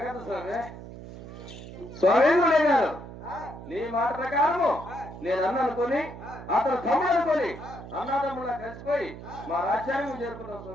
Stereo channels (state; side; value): noise; right; hum, 13 dB below the sound